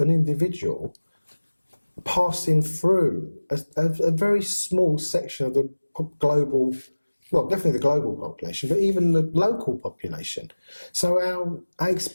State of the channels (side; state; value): both; inverted; correlation -1.00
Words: an individual passing through a very small section of the global, well, definitely the global population, but even the local population. So our